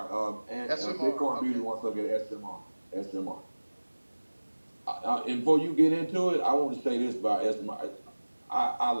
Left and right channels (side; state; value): both; inverted; correlation -1.00